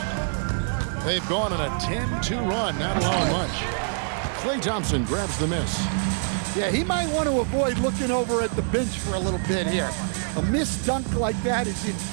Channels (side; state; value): left; silent; 62 dB below the other